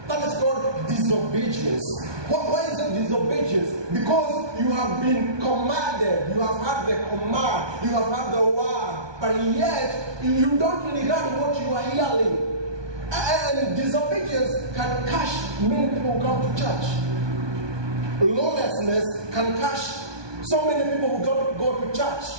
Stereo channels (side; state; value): left; late; 1.2 ms